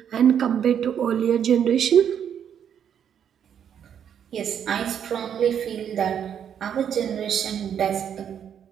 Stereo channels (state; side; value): quieter; left; 8.7 dB